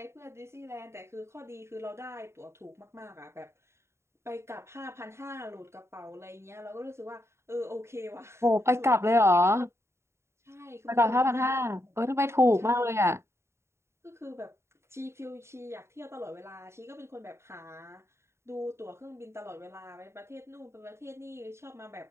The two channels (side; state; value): left; late; 0.13 ms